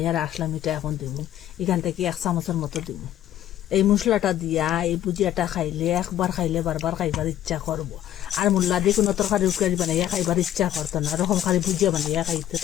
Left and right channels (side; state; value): right; quieter; 12.0 dB